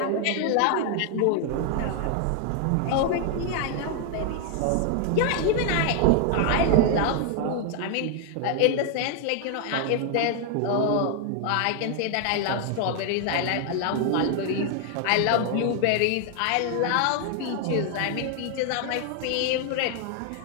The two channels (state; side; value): different; both; correlation 0.00